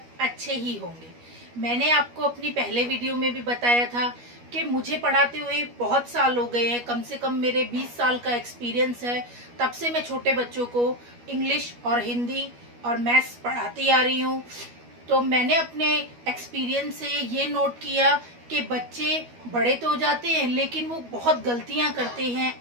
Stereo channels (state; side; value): late; left; 12 ms